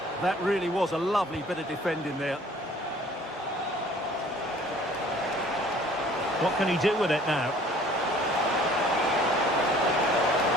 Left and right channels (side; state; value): both; normal; correlation 0.53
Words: That really was a lovely bit of defending there. What can he do with it now?